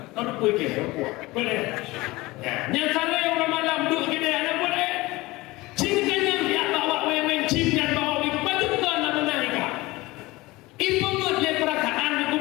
Nak kuih ke? Boleh. Yang sana yang orang malam duduk kita anak boleh. Cingkanya dia bawa weng-weng cingkan bawa weng baju kan nak menaik. Ibu ngut le perasaan aku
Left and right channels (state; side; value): quieter; right; 20.7 dB